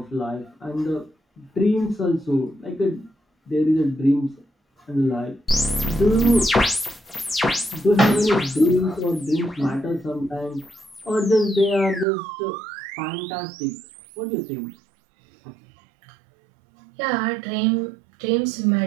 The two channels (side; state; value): left; drops out; at 12.1 s